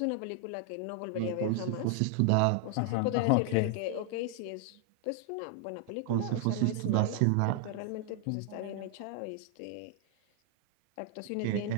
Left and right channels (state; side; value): different; both; correlation 0.00